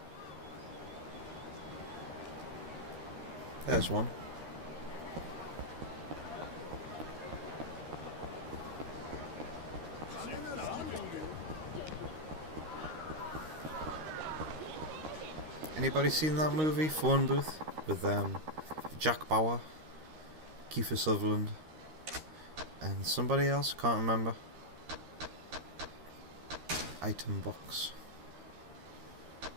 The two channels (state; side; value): late; left; 13 ms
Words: There's one. Anybody seen that movie, Phone Booth, with Jack Bauer, Kiefer Sutherland, and somebody else? Can't remember. Item box.